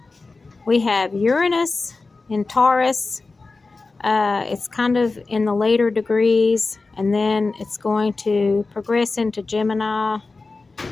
We have Uranus in Taurus. It's kind of in the later degrees, and then it's going to progress into Gemini.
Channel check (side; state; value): right; quieter; 3.8 dB